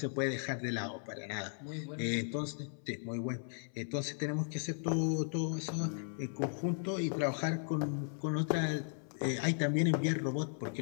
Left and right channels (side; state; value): right; silent; 54 dB below the other